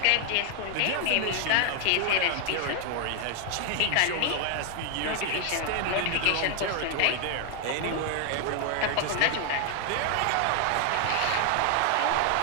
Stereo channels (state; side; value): different; both; correlation 0.00